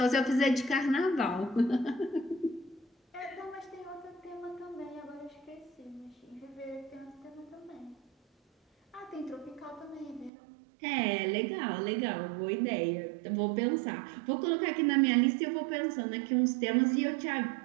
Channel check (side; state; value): left; drops out; at 10.3 s